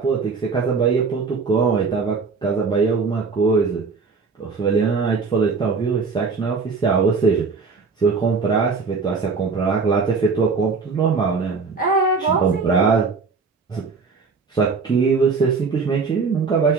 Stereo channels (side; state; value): left; quieter; 4.8 dB